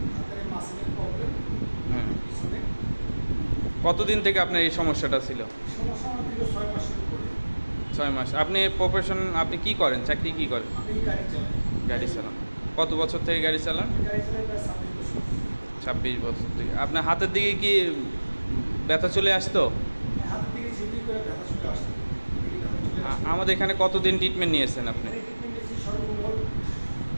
হাতের মাসেলের প্রবলেম। হুম। পিছনে কতদিন থেকে আপনার এই সমস্যাটা ছিল? সমস্যা আমার দীর্ঘ 6 মাসের উপরে। 6 মাস। আপনি প্রফেশন আপনি কি করেন? চাকরি কি করেন? আমি গাড়ি চালাই। গাড়ি চালান। কত বছর থেকে গাড়ি চালান? আমি গাড়ি চালাই প্রায় 26 বছর। 26 বছর থেকে। আপনার হাতের দিকে কি ব্যথা চলে আসতো? হাতের দিকে ঝিমঝিম করে ব্যথা চলে আসতো। এদিকে ব্যথা চলে আসতো। আমাদের এখানে কতদিন ট্রিটমেন্ট নিয়েছেন আপনি? এখানে ট্রিটমেন্ট নিয়েছি সর্বমোট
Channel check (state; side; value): inverted; both; correlation -1.00